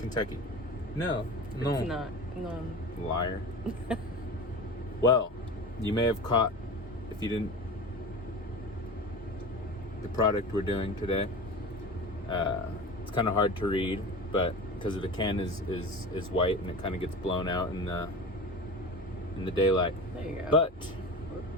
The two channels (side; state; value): both; normal; correlation 0.32